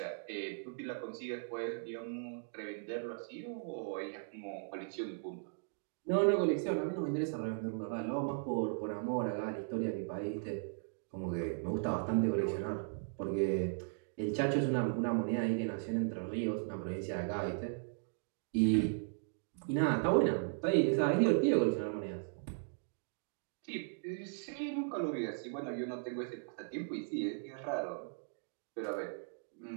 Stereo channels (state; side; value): silent; left; digital silence